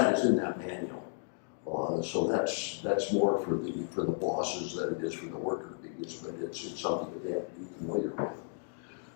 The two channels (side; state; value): right; silent; digital silence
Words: is in that manual. So that's more for the bosses than it is for the worker bees, but it's something that they have to be familiar